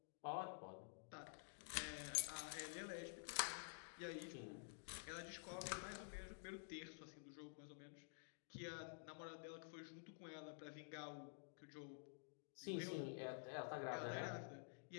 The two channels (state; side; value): silent; right; digital silence